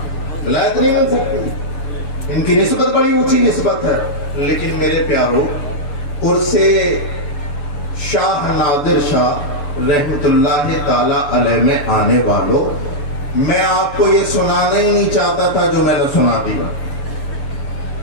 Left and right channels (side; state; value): right; late; 6.9 ms